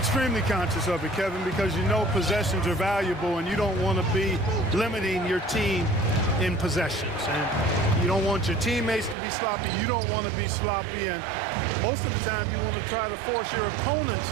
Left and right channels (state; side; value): drops out; left; at 9.2 s